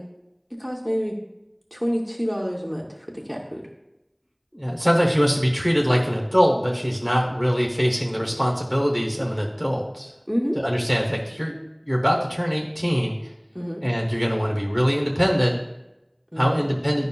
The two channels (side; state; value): both; identical; correlation 1.00